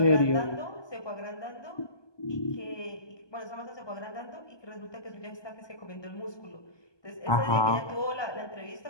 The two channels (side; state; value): right; late; 1.2 ms